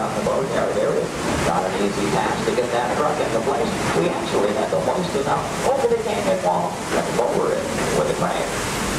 in the boatyard area. Not an easy task to get that truck into place. We actually had to hoist it up over the canyon wall and lower it with a crane.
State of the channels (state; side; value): identical; both; correlation 1.00